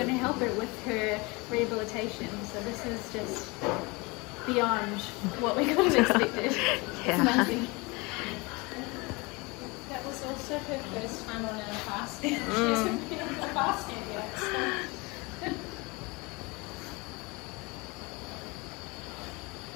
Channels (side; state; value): right; quieter; 26.0 dB